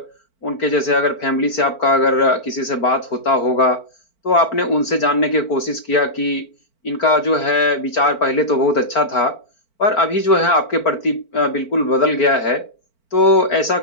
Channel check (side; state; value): right; late; 4.5 ms